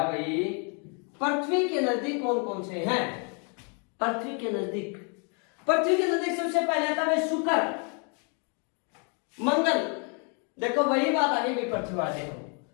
भाई, पृथ्वी के नजदीक कौन कौन से हैं, पृथ्वी के नजदीक, पृथ्वी के नजदीक सबसे पहले आता है शुक्र, मंगल। देखो वही बात आ गई भाई पृथ्वी वाले,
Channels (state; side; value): quieter; right; 37.8 dB